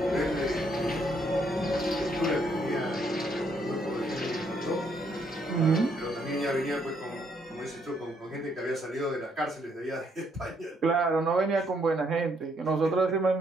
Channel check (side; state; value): both; normal; correlation 0.71